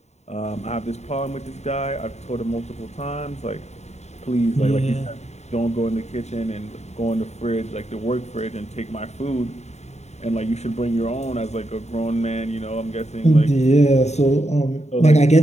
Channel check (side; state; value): right; late; 0.32 ms